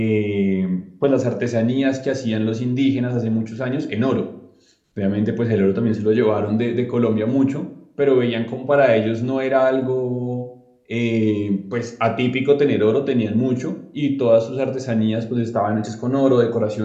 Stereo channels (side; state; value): both; identical; correlation 1.00